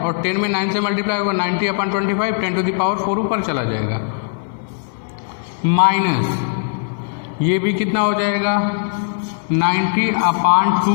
और 10 में 9 से मल्टीप्लाई होगा, 90 अपॉन 25 10 टू द पावर 4 ऊपर चला जाएगा, माइनस ये भी कितना हो जाएगा? 90 upon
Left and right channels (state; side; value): silent; right; 63 dB below the other